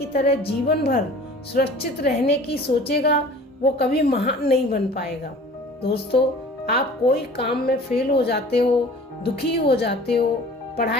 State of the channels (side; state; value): both; normal; correlation 0.45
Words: तरह जीवन भर सुरक्षित रहने की सोचेगा वो कभी महान नहीं बन पाएगा। दोस्तों, आप कोई काम में फेल हो जाते हो, दुखी हो जाते हो,